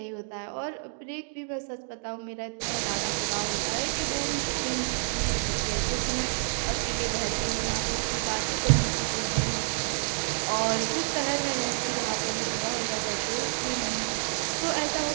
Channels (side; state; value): left; silent; digital silence